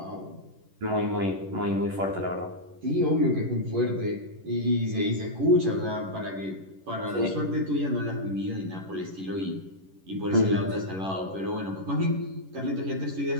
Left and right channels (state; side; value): late; left; 11 ms